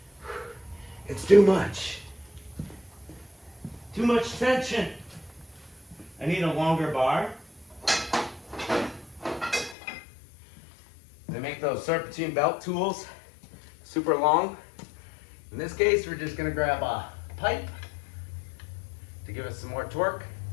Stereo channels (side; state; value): right; drops out; at 9.8 s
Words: It's too much. Too much tension. I need a longer bar. They make those serpentine belt tools super long. In this case, we're just gonna grab a pipe to give us some more torque.